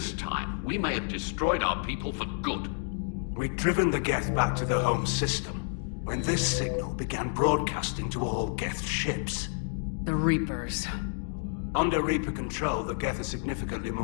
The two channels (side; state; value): right; silent; 56 dB below the other